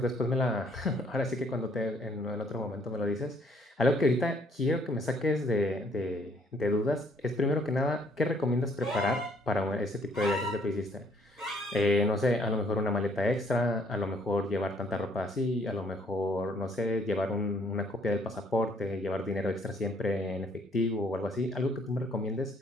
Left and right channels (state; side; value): normal; both; correlation 0.64